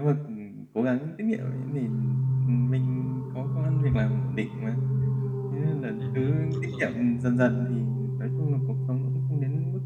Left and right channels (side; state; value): both; identical; correlation 1.00